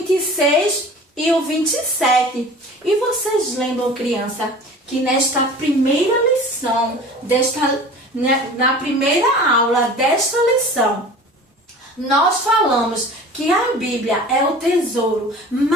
e o 27. E vocês lembram, criança, que nesta primeira lição, na primeira aula desta lição, nós falamos que a Bíblia é o tesouro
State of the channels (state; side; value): normal; both; correlation 0.41